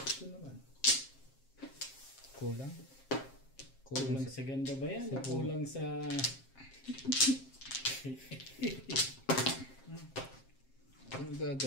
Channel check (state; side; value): late; right; 7.5 ms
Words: Ito naman. Kulang. Kulang sa ganda ba yan? O kulang sa... Ano